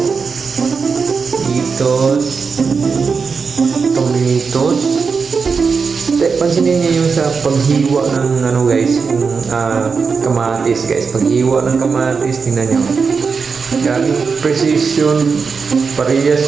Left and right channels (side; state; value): left; quieter; 5.3 dB